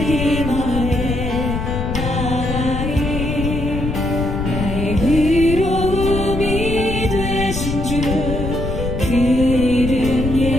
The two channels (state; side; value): noise; left; rumble, 4 dB below the sound